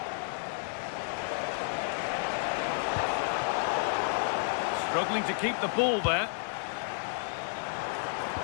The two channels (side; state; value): right; silent; digital silence